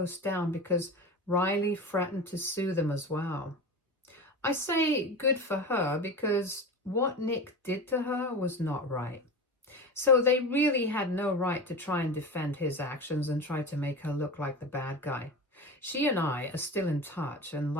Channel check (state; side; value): normal; both; correlation 0.28